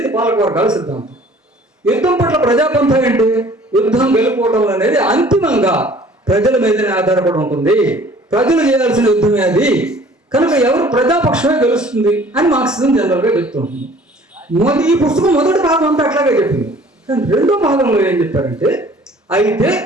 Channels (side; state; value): both; normal; correlation 0.52